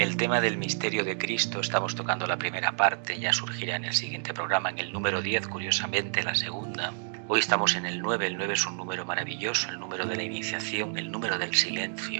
tema del misterio de Cristo, estamos tocando la primera parte, ya surgirá en el siguiente programa, en el número 10, curiosamente la segunda. Hoy estamos en el 9 es un número maravilloso, el número de la iniciación, el número del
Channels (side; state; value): left; silent; digital silence